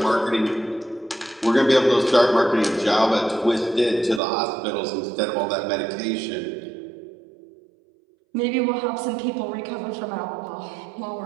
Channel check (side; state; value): left; drops out; at 4.2 s